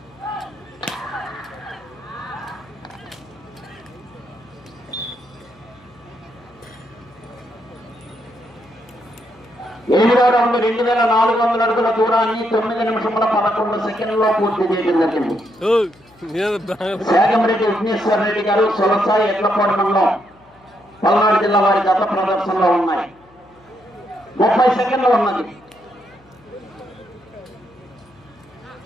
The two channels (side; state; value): left; noise; hum, 29 dB below the sound